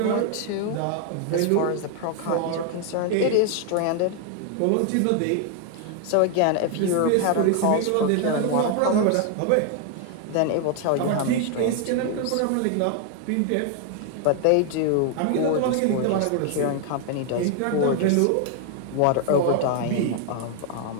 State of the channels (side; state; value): both; different; correlation 0.00